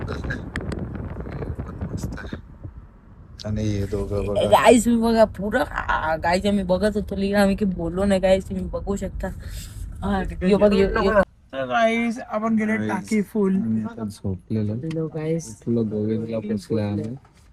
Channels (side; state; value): both; identical; correlation 1.00